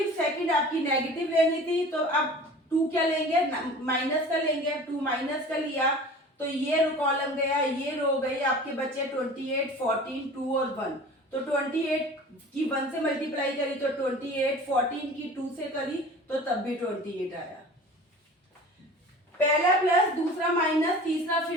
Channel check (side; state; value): both; normal; correlation 0.41